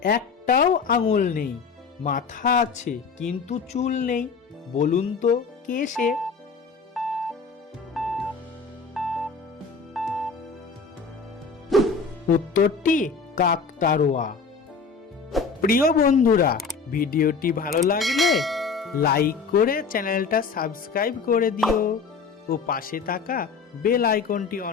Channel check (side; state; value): right; quieter; 5.0 dB